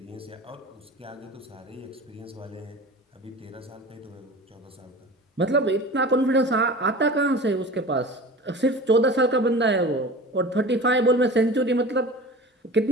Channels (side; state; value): both; normal; correlation 0.37